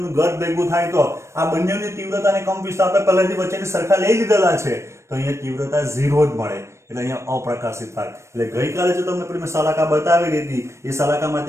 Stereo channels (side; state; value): left; late; 0.13 ms